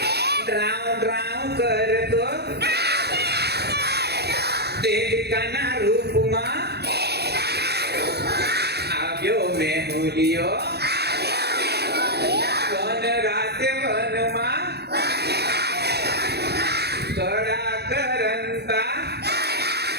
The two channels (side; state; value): left; late; 0.48 ms